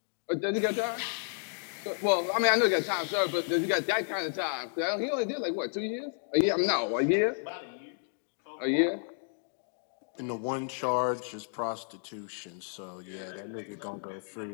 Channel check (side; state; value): right; silent; digital silence